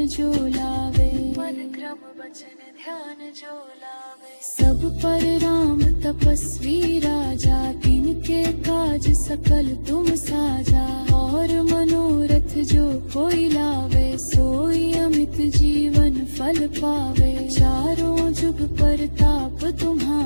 जो लावे। सब पर राम तपस्वी राजा, तिनके काज सकल तुम साजा। और मनोरथ जो कोई लावे, सोई अमित जीवन फल पावे। चारों जुग परताप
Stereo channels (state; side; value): inverted; both; correlation -1.00